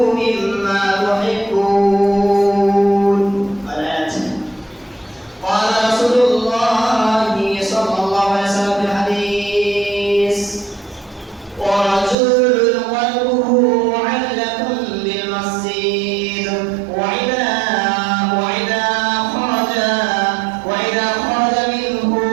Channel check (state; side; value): drops out; left; at 12.2 s